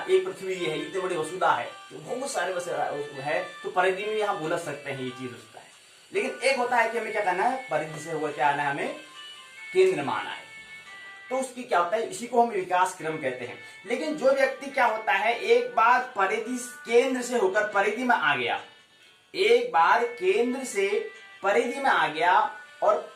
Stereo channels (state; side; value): identical; both; correlation 1.00